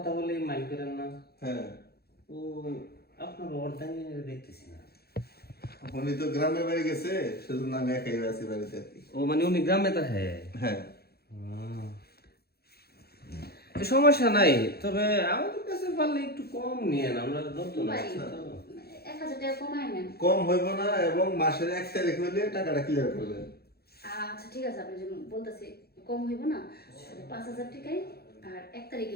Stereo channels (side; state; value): right; late; 0.46 ms